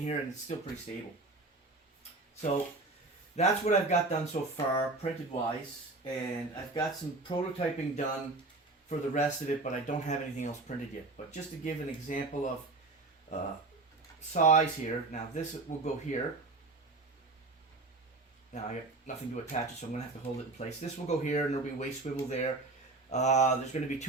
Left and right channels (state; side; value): quieter; left; 3.4 dB